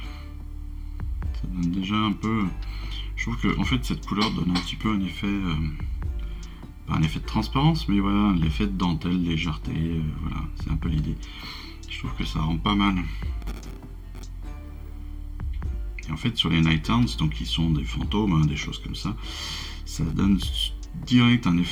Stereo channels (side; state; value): both; identical; correlation 1.00